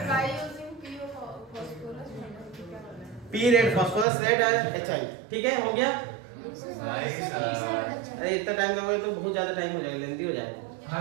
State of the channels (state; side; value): drops out; left; at 4.0 s